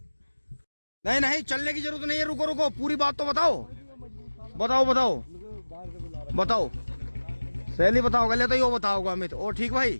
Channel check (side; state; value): both; inverted; correlation -1.00